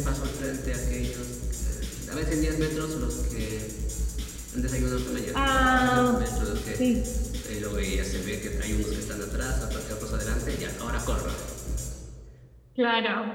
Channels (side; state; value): both; identical; correlation 1.00